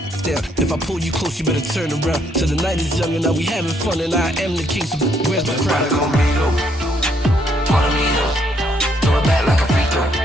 down. If I pull you close, you better turn around. Till the night is young and now we having fun and I am the king, so where's my crown? Follow me though, throw it back like a free throw.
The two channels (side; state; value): both; normal; correlation 0.71